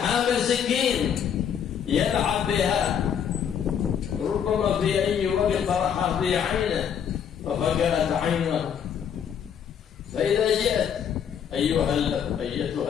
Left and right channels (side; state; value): right; quieter; 8.2 dB